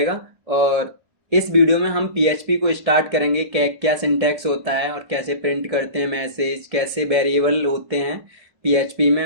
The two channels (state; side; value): late; left; 1.6 ms